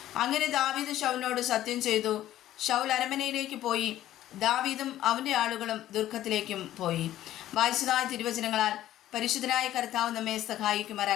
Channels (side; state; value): right; quieter; 13.2 dB